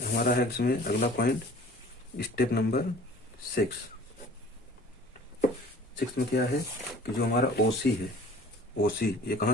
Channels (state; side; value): normal; both; correlation 0.47